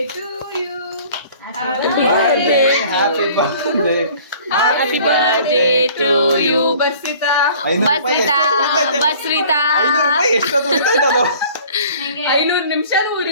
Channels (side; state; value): both; inverted; correlation -0.50